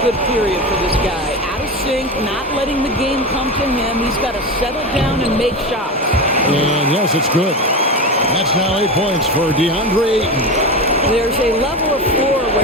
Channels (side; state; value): both; normal; correlation 0.22